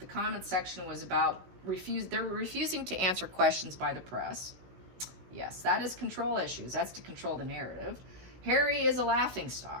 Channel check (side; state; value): left; late; 16 ms